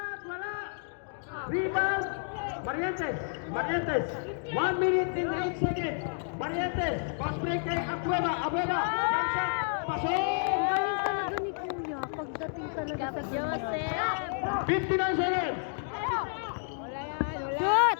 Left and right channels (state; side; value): silent; right; digital silence